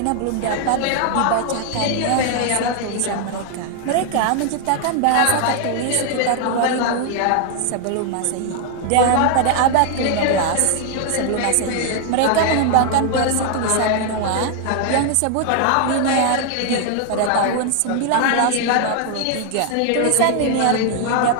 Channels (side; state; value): both; different; correlation 0.00